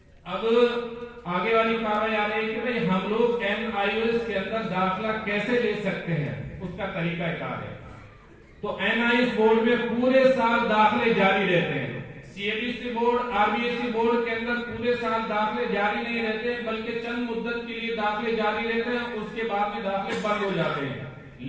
اب آگے والی کارروائی آ رہی ہے کہ بھئی ہم لوگ NIOS کے اندر داخلہ کیسے لے سکتے ہیں، اس کا طریقہ کار ہے. تو NIOS بورڈ میں پورے سال داخلے جاری رہتے ہیں. CBSE بورڈ RBSE بورڈ کے اندر پورے سال داخلے جاری نہیں رہتے بلکہ چند مدت کے لیے داخلے جاری رہتے ہیں، اس کے بعد میں داخلے بند ہو جاتے ہیں.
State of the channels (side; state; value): both; identical; correlation 1.00